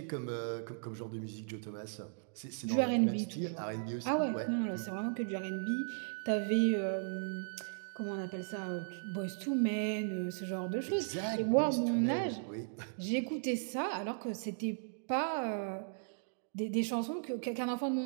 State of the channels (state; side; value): silent; left; digital silence